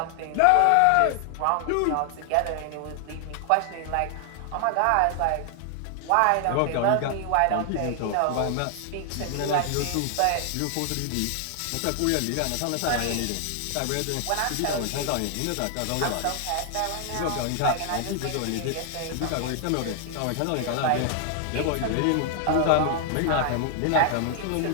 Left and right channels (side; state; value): both; different; correlation 0.00